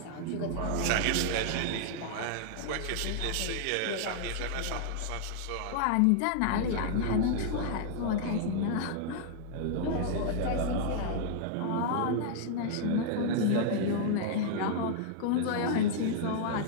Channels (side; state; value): both; different; correlation -0.01